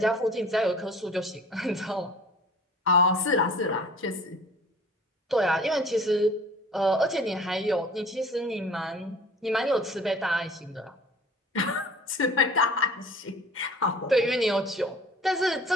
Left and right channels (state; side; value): normal; both; correlation 0.45